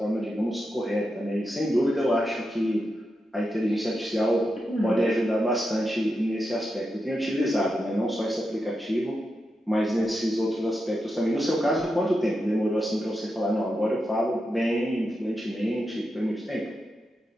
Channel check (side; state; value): both; normal; correlation 0.87